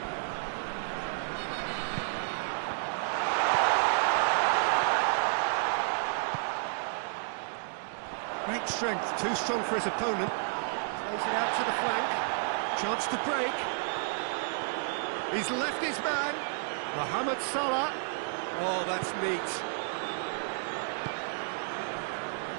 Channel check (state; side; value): silent; left; digital silence